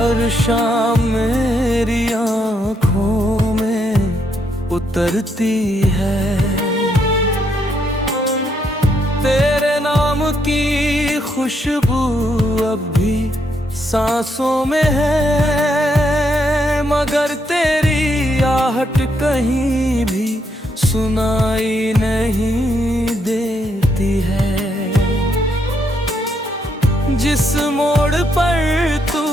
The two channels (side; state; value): both; normal; correlation 0.76